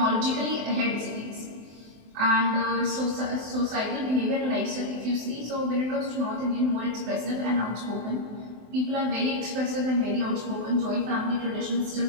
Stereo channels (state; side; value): late; left; 23 ms